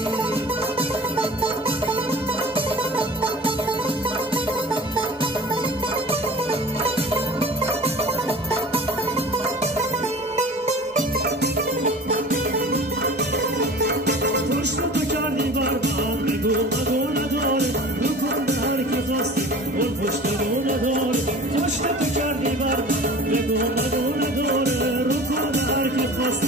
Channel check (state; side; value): normal; both; correlation 0.41